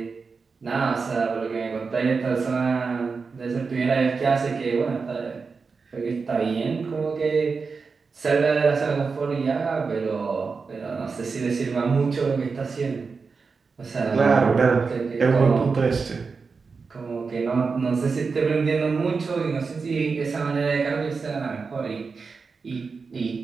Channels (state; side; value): quieter; left; 4.8 dB